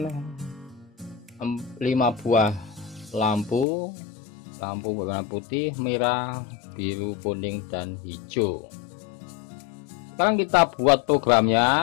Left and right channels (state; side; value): drops out; right; at 3.7 s